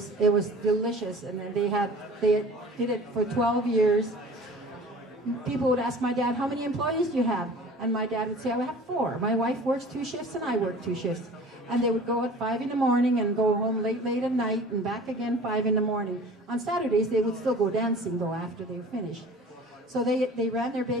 delicious, and they did it for 12 years. People would ask my dad, "How many employees do you have?" And my dad would say, "I have 4. My wife works 2 shifts, and I work 2 shifts." And they would go at 5 in the morning and go home late at night and back again 5 in the morning. On Saturdays, they would still go dancing, though, after they were finished. So they ran their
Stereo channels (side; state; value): both; normal; correlation 0.44